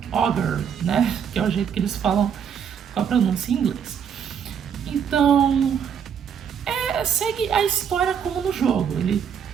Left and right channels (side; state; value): left; quieter; 7.8 dB